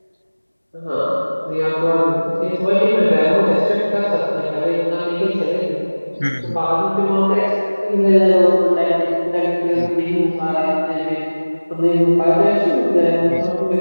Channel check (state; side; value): inverted; both; correlation -1.00